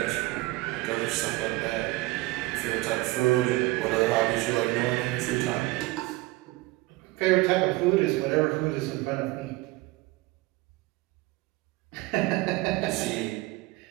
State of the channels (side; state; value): left; quieter; 20.4 dB